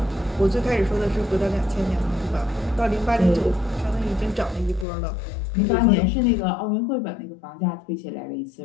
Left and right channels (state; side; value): drops out; right; at 4.9 s